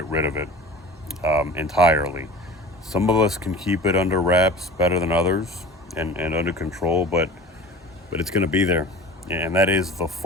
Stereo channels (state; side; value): normal; both; correlation 0.39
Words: rid of it entirely. Some of us can keep it under wraps better than others and under control, but it's going to be there, and that is the